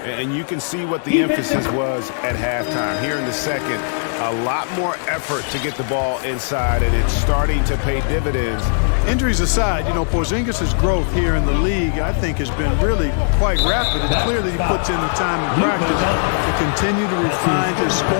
And you can see what the emphasis was at halftime. Here in the second, a lot more effort to get the ball inside, and it's starting to pay dividends. Injuries aside, you know, Porzingis' growth here in the league, I think, has been really quite rapid. It's clear that he puts in the time in practice to continue to refine his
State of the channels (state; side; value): silent; right; digital silence